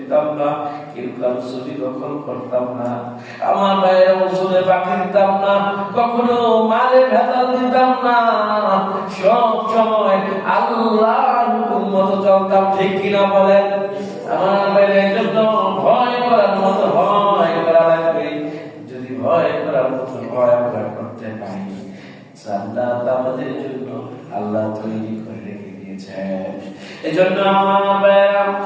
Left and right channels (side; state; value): both; identical; correlation 1.00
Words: না, কেউ কারো ছবি দখল করতাম না, আমার ভাইয়েরা ওষুধে বাকি দিতাম না, কখনো মালে ভেজাল দিতাম না, সব সময় আল্লাহর হুকুম মতো চলতাম, ঠিক কিনা বলেন? আমার ভাইয়েরা এই জন্য ভয় করার মতো ভয় করা লাগবে। যদি ভয় করার মতো ভয় আমরা করতে পারি, জান্নাত আমাদের জন্য আল্লাহ তৈরি করে রেখে দিয়েছেন। এজন্য আমার